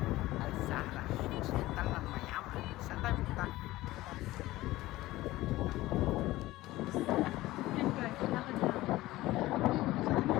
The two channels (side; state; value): right; quieter; 17.4 dB